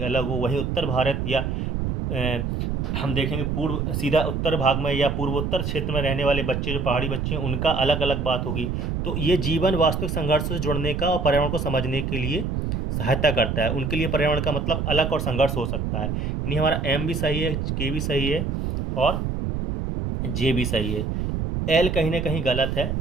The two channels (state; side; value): noise; right; rumble, 1 dB below the sound